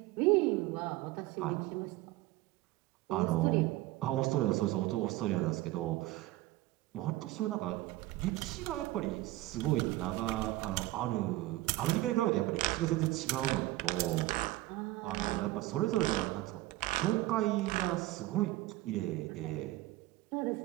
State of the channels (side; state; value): left; quieter; 17.4 dB